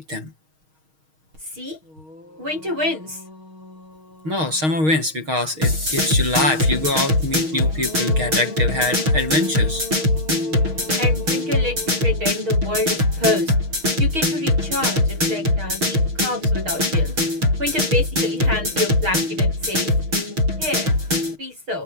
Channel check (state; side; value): late; left; 6.4 ms